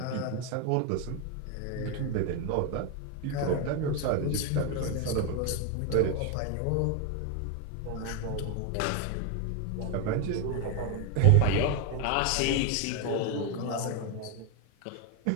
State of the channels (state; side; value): different; both; correlation 0.02